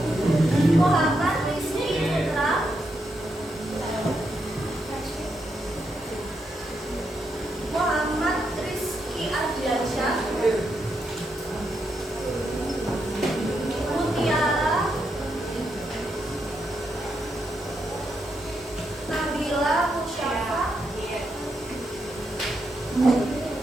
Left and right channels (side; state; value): both; normal; correlation 0.82